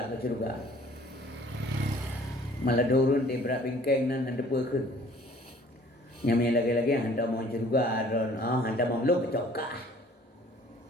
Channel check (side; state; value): both; normal; correlation 0.54